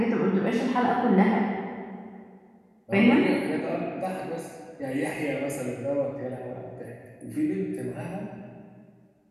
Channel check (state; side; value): identical; both; correlation 1.00